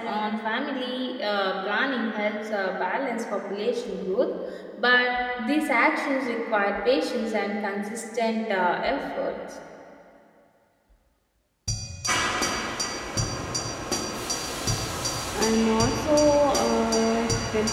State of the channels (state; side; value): identical; both; correlation 1.00